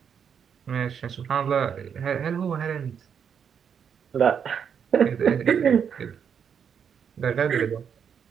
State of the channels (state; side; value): quieter; left; 7.5 dB